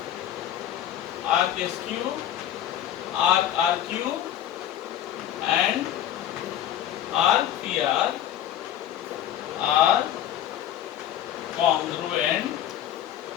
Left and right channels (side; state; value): right; quieter; 11.3 dB